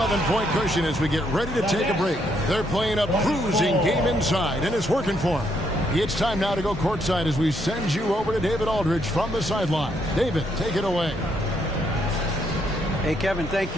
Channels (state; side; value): normal; both; correlation 0.74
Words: cushion as we get ready to take a break. They're playing a bruising game inside, and it's working for them. It's time now to go courtside as we send you over to David Aldridge from the sideline. David, take it away. Hey, Kevin, thank